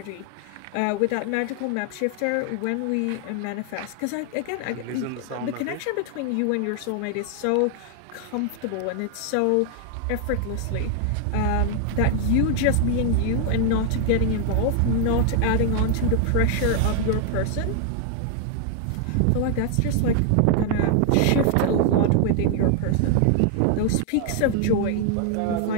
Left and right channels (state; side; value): different; both; correlation 0.00